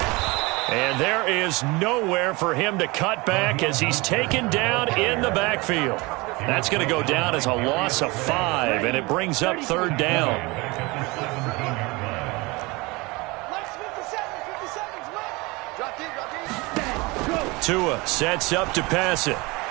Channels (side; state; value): left; quieter; 24.5 dB